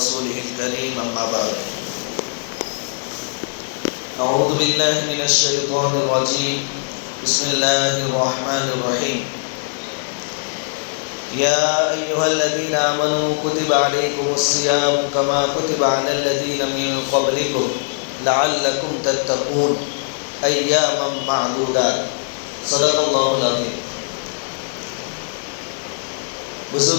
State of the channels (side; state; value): right; silent; digital silence